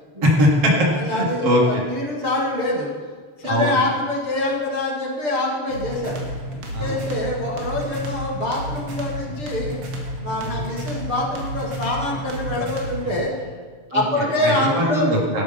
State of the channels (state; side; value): late; left; 6.8 ms